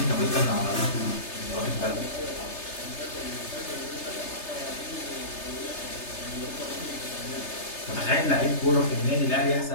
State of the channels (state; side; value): late; right; 3.3 ms